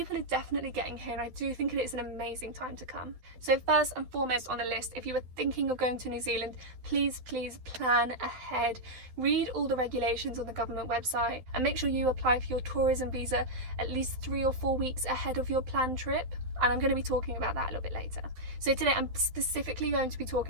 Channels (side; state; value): left; late; 12 ms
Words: are definitely getting here, and I do think it is an amazing time to come. So first and foremost on the list, if you were thinking of going to New Zealand, please plan ahead. Read all the regulations on the government website and make sure you apply for your tourism visa at least 3 or 4 weeks ahead of your planned trip. And I'm going to be talking about that a little bit later. So today I'm specifically going to be